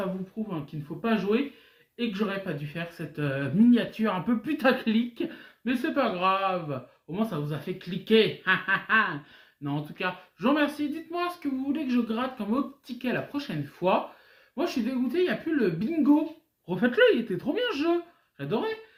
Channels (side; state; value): both; identical; correlation 1.00